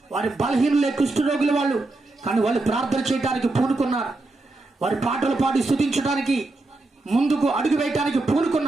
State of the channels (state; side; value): quieter; left; 3.0 dB